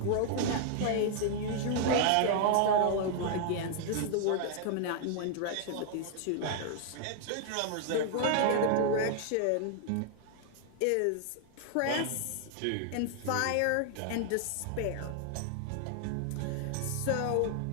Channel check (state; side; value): different; both; correlation 0.00